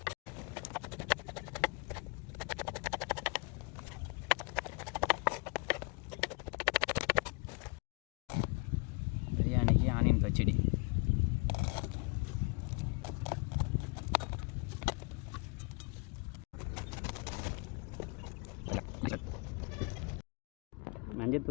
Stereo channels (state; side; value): quieter; right; 31.6 dB